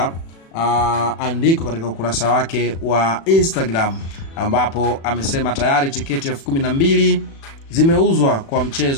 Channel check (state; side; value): late; right; 36 ms